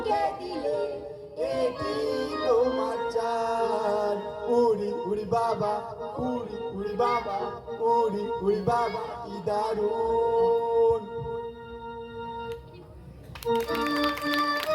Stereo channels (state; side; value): identical; both; correlation 1.00